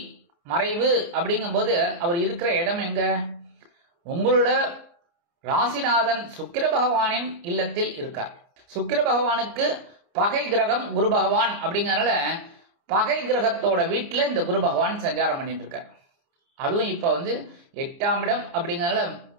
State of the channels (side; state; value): left; late; 29 ms